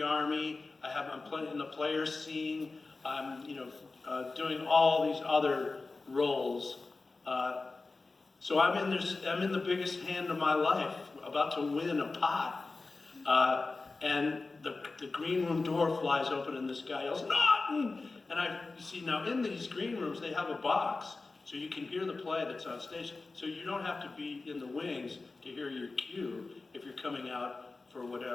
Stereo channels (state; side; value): quieter; right; 3.7 dB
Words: army. I'm playing in the player scene. I'm, doing all these other roles. So I'm in the biggest hand of my life, about to win a pot. And the green room door flies open and this guy yells, Naughton! And I see now in these green rooms, they have a box. So you can hear the play that's on stage. So you don't have to be in the wings to hear your cue if you're coming out for